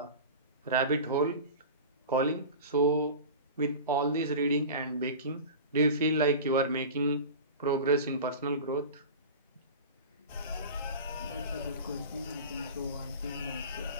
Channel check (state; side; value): inverted; both; correlation -0.33